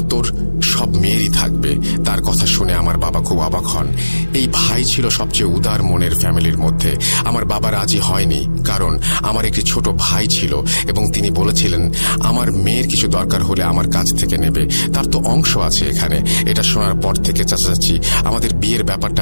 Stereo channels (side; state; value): both; inverted; correlation -1.00